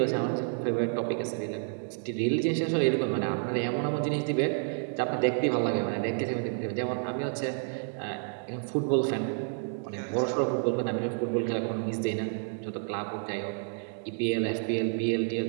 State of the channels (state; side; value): silent; left; 58 dB below the other